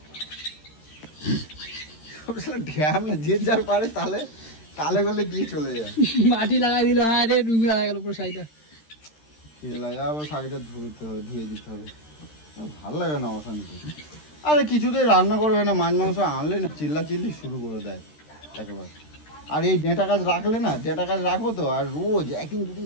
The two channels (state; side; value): late; right; 13 ms